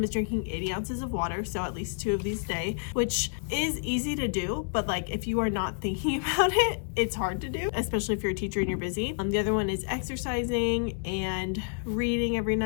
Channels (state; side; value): silent; right; digital silence